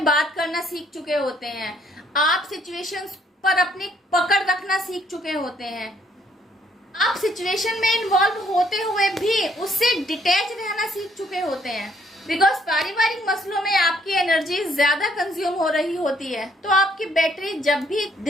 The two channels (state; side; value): normal; both; correlation 0.66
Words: बात करना सीख चुके होते हैं। आप सिचुएशंस पर अपनी पकड़ रखना सीख चुके होते हैं। आप सिचुएशन में इन्वॉल्व होते हुए भी उससे डिटैच रहना सीख चुके होते हैं। बिकॉज पारिवारिक मसलों में आपकी एनर्जी ज्यादा कंज्यूम हो रही होती है, तो आपकी बैटरी जब भी